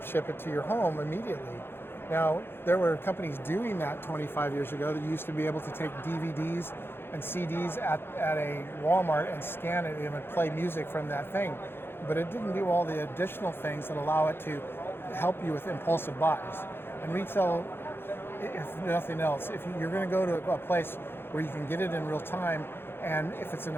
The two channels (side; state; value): right; late; 0.11 ms